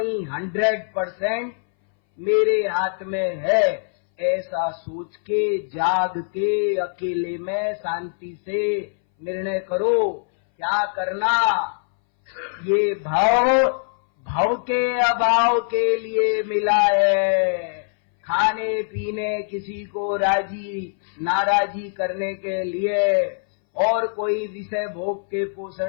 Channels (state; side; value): silent; right; 62 dB below the other